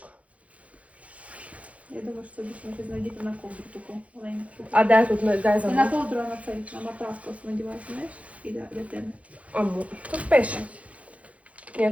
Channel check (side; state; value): left; late; 0.065 ms